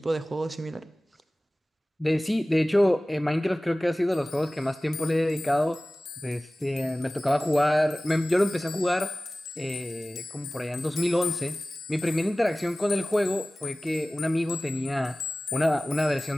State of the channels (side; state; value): both; normal; correlation 0.97